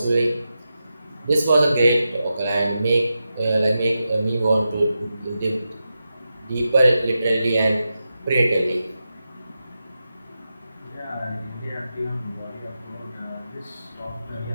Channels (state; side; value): inverted; both; correlation -0.90